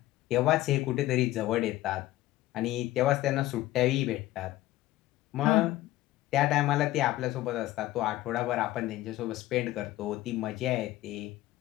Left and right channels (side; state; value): right; quieter; 16.0 dB